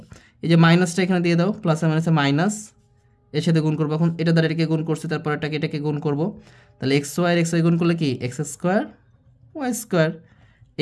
এই যে মাইনাসটা এখানে দিয়ে দাও, প্লাসে মাইনাসে মাইনাস, এর সাথে গুণ করবো। এখন এটা দ্বারা এটাকে গুণ করছি, তারপর এটাকে গুণ করবো, তাহলে এক্স ওয়াই এক্স ওয়াই গুণ করলে কি x square Y square,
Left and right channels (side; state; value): both; identical; correlation 1.00